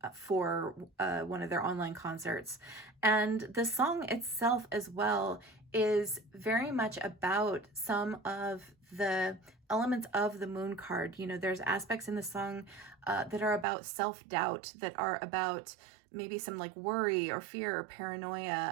for one of their online concerts. And the song itself as well is very much about some of the elements of the Moon card. You know, there's aspects in the song that are about self-doubt, that are about maybe some like worry or fear or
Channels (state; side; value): drops out; left; at 13.7 s